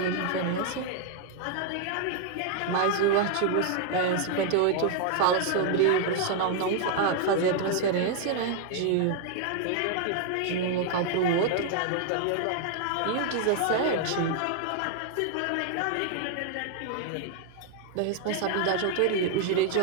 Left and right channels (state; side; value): different; both; correlation 0.00